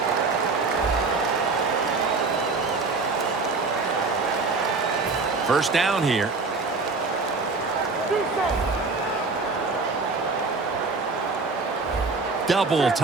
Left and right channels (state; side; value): quieter; left; 4.0 dB